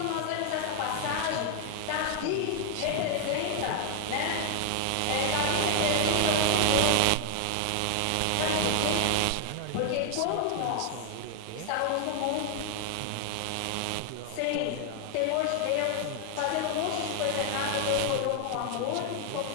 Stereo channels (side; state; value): both; different; correlation 0.00